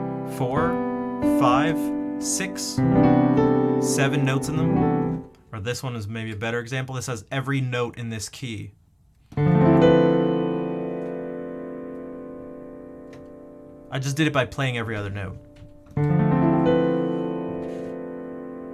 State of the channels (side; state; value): both; identical; correlation 1.00